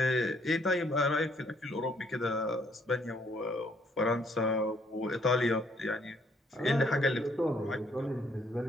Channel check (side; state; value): both; normal; correlation 0.67